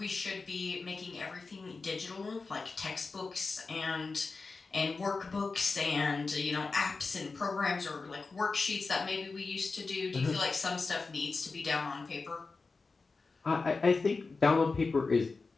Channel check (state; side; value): quieter; right; 4.1 dB